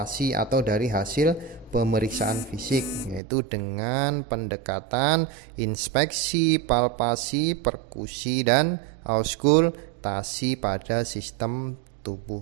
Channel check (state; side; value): drops out; left; at 3.2 s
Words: atau dari hasil pemeriksaan fisik, yaitu dengan pendekatan inspeksi, palpasi, perkusi dan auskultasi pada sistem